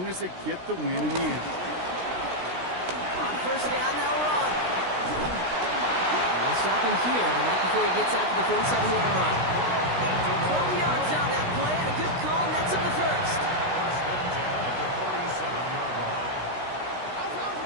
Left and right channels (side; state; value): left; late; 16 ms